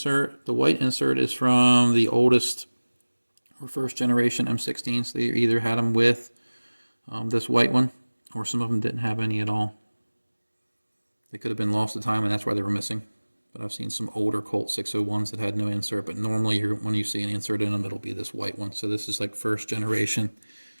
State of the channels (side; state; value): both; inverted; correlation -1.00